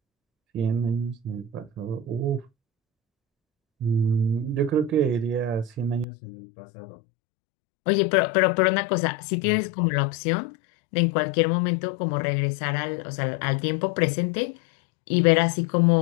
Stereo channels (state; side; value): drops out; right; at 6.1 s